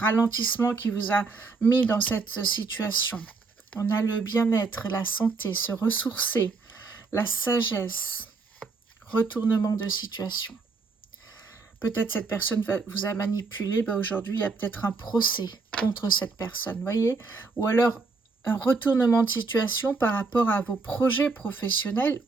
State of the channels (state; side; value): quieter; left; 4.2 dB